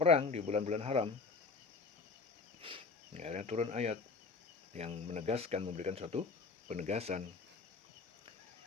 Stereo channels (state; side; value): quieter; right; 4.4 dB